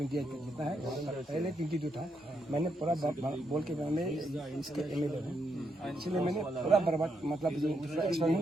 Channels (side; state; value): both; normal; correlation 0.80